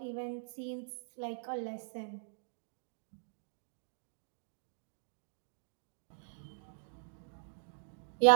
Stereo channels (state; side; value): silent; left; digital silence